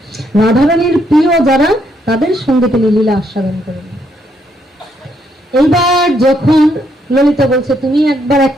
রাধারানীর প্রিয় যারা, তাদের সঙ্গে তিনি লীলা আস্বাদন করেন। এইবার যখন ললিতা বলছে, তুমি একবার এক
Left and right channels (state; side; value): normal; both; correlation 0.74